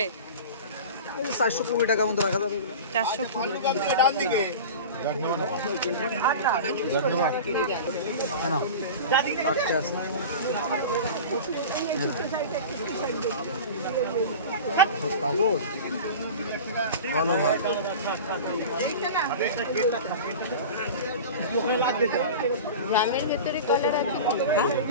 420 টাকা মতো রাখা যাবে। 420। কাপড় ভালো ভাই। গ্রামের ভেতরে কালার আছে,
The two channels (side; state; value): both; inverted; correlation -0.32